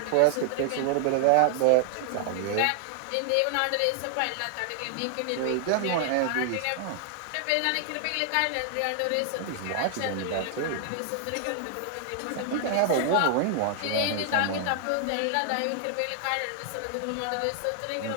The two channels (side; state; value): both; different; correlation 0.00